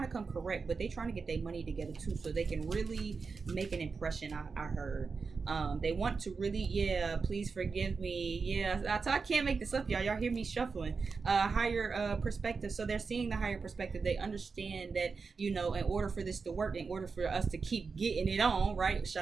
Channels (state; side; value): quieter; left; 4.8 dB